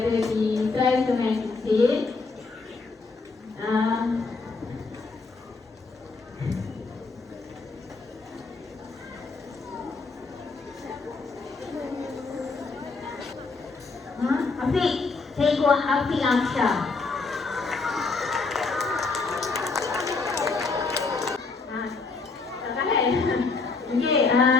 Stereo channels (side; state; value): right; quieter; 4.1 dB